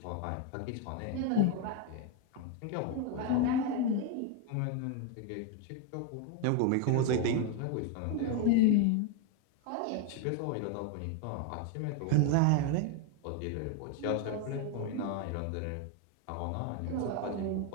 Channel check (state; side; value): different; both; correlation 0.01